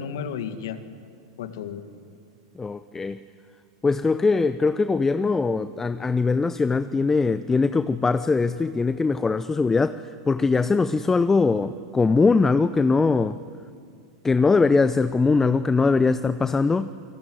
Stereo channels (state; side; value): quieter; right; 3.8 dB